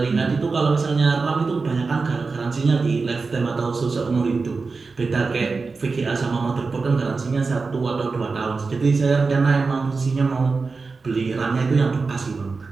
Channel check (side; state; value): left; quieter; 4.3 dB